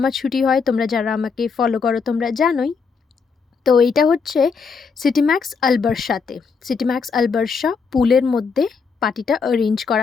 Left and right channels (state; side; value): quieter; right; 5.4 dB